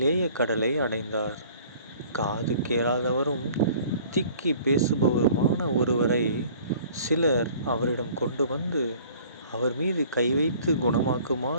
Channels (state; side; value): inverted; both; correlation -0.51